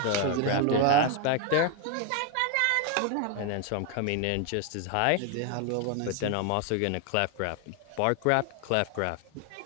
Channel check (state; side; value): different; both; correlation 0.01